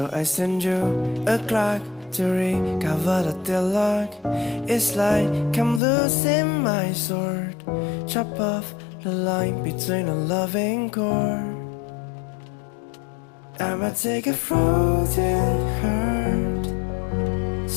I send you a clock to recover the deadlock. It's like I'm losing my sword. Chop off the line between a loving chord. I'ma take a frozen heart.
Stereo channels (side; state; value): right; drops out; at 5.8 s